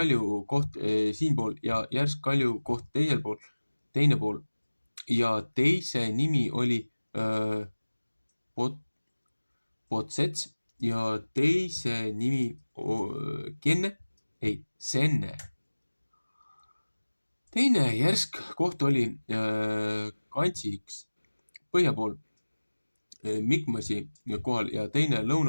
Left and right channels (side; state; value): both; inverted; correlation -1.00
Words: koht siinpool ja järsk kalju koht teine pool. Ja teise nimi oli Potsets ja teise nimi Senne. Teine järsk koht oli Kantsiks põhja pool Mikmasi kohal ja teine